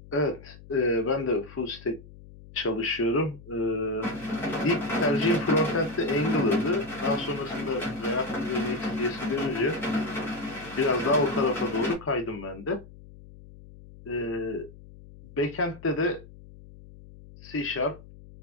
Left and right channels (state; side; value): noise; left; hum, 19 dB below the sound